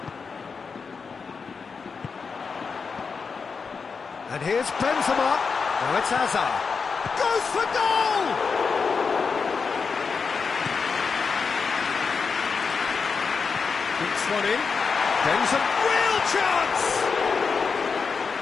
And here's Benzema. Now it's Hazard. Goes for goal! Kicks one in. Benzema, real chance!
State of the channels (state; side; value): quieter; right; 5.3 dB